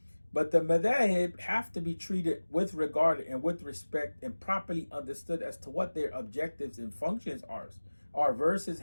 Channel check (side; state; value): both; inverted; correlation -1.00